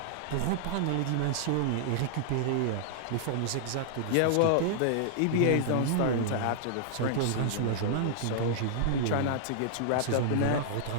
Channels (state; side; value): different; both; correlation -0.01